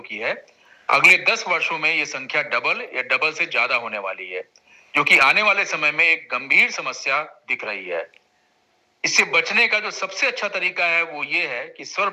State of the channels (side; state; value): both; identical; correlation 1.00